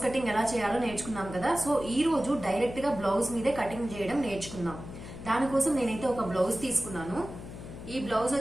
కటింగ్ ఎలా చేయాలో నేర్చుకున్నాం కదా. సో ఈ రోజు డైరెక్ట్ గా బ్లౌజ్ మీదే కటింగ్ చేయడం నేర్చుకుందాం. దానికోసం నేనైతే ఒక బ్లౌజ్ తీసుకున్నాను. ఈ బ్లౌజ్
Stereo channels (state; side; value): noise; left; hum, 12 dB below the sound